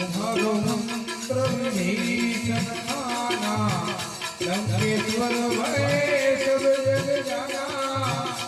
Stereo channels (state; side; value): identical; both; correlation 1.00